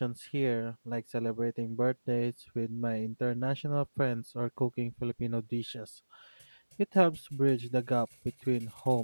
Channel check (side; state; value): both; inverted; correlation -1.00